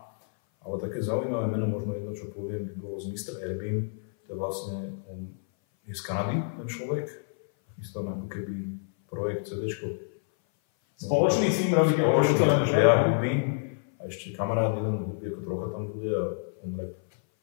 Ale také zaujímavé meno, možno jedno, čo poviem, by bolo z Mr. Airbnb, to je vlastne, on je z Kanady, ten človek, chystáme ako keby projekt CDčko. Spoločný s ním robíte? Spoločný, že ja hudby a ešte kamarát jeden hudby, ako trocha tam bude a on rap.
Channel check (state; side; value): silent; right; 57 dB below the other